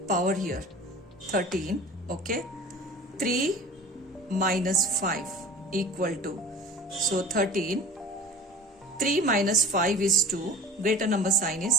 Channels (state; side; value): normal; both; correlation 0.39